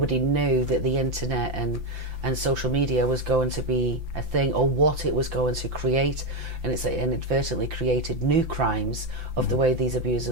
knew that the internet and social media was going to be a thing, or what it was going to create, and it's inadvertently created new crimes of the way these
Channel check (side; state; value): left; late; 5.8 ms